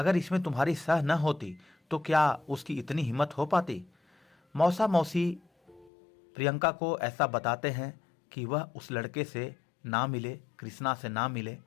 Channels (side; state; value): right; drops out; at 5.9 s